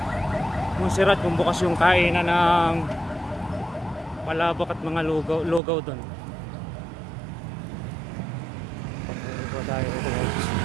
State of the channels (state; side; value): drops out; left; at 5.6 s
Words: Montserrat, kung bukas yung kainan ng palabok at mga lugaw doon. Dito tayo dito guys.